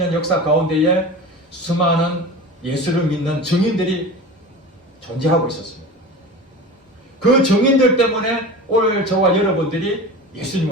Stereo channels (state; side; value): normal; both; correlation 0.32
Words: 역사 가운데에 수많은 예수를 믿는 증인들이 존재하고 있었습니다. 그 증인들 때문에 오늘 저와 여러분들이